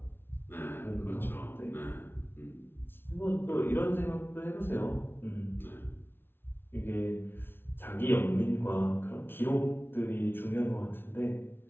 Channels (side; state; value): right; late; 0.11 ms